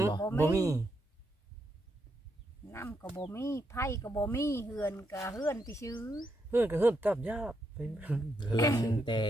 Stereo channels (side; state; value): both; normal; correlation 0.80